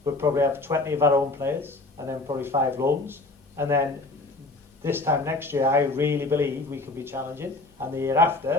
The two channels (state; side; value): quieter; right; 3.2 dB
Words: we'll probably have 20 of our own players, and then probably 5 loans, and then this time next year, I really believe we can be challenging, and the year